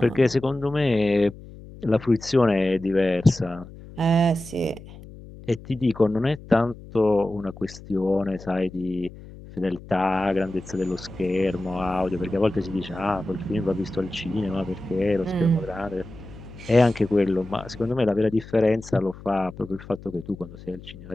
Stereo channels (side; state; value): left; noise; hum, 17 dB below the sound